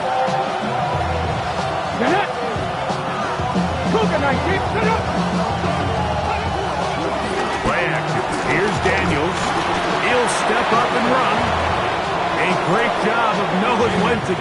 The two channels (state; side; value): identical; both; correlation 1.00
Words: Play action. Here's Daniels. He'll step up and run. A great job of knowing when to